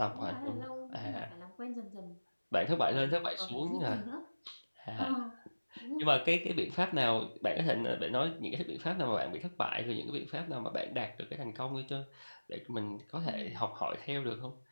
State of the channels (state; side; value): inverted; both; correlation -1.00